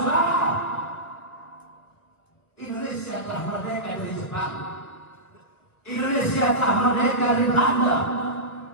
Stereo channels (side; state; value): right; late; 1.2 ms